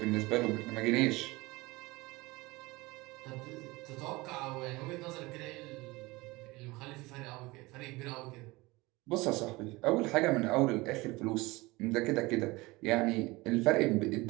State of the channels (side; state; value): left; quieter; 22.1 dB